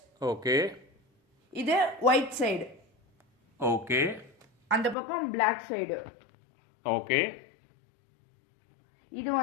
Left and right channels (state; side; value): drops out; right; at 5.0 s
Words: ஓகே, இது ஒயிட் சைடு. ஓகே, அந்த பக்கம் பிளாக் சைடு. ஓகே, இது